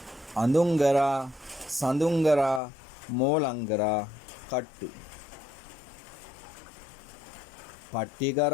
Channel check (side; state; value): right; drops out; at 2.6 s